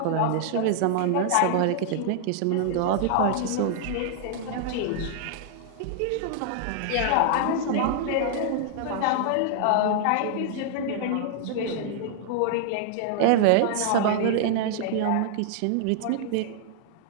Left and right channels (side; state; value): both; different; correlation -0.01